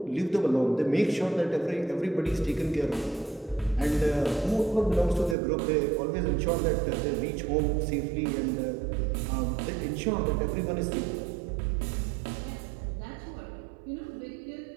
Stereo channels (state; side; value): drops out; left; at 5.4 s